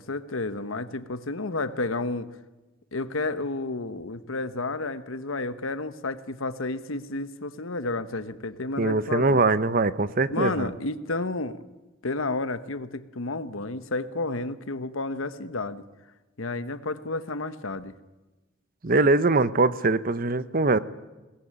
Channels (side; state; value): both; normal; correlation 0.02